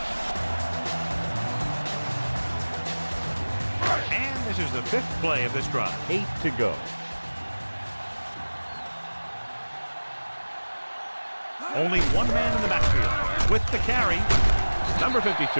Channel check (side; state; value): both; inverted; correlation -1.00